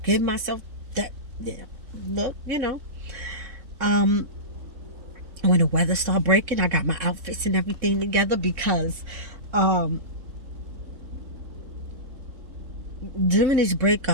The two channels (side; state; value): left; late; 3.6 ms